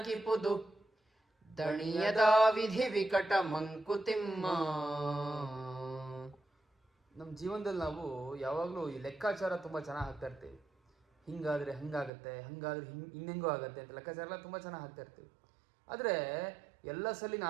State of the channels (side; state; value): left; drops out; at 12.1 s